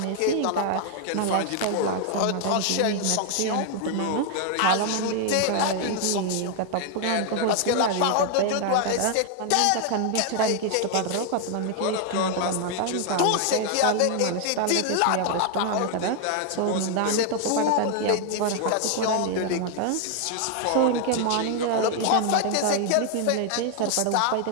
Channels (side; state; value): both; different; correlation 0.00